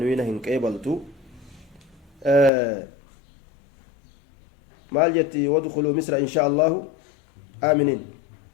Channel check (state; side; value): drops out; right; at 2.5 s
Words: قبلتو مال جتي وادخلوا مصر ان شاء الله امنين